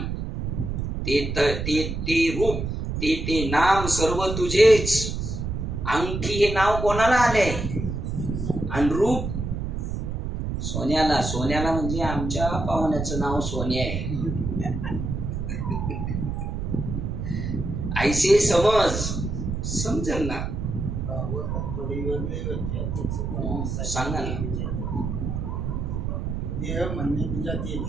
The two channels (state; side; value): noise; right; rumble, 3 dB below the sound